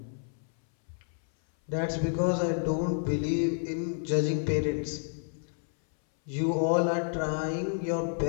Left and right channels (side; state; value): right; silent; 58 dB below the other